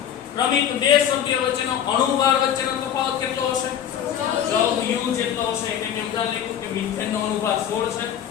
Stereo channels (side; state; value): right; quieter; 9.6 dB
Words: ક્રમિક બે સભ્યો વચ્ચેનો અણુભાર વચ્ચેનો તફાવત કેટલો હશે? 14 U જેટલો હશે. એટલે મેં ઉદાહરણ લખ્યું કે મિથેન નો અણુભાર 16 છે,